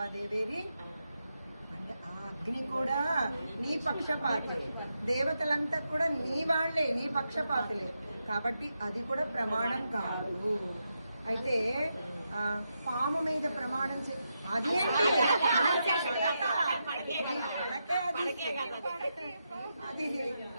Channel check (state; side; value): inverted; both; correlation -0.85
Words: దేవేరి అంటే ఆ అగ్ని కూడా నీ పక్షపాతి, దేవతలంతా కూడా నీ వాళ్లే, నీ పక్షపాతులే, కాబట్టి అది కూడా ప్రమాణం కాదు. అయితే పాము మీద ప్రమాణం అదేంటి